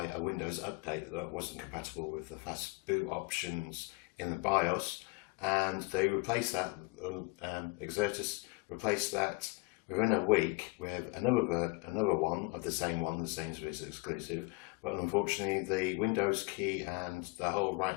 a Windows update that wasn't compatible with the fast boot options in the BIOS, and they replaced that, Exertus replaced that within a week with another one of the same one, the Sainsbury's exclusive, but unfortunately the Windows key and the whole right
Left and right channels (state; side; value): quieter; right; 28.1 dB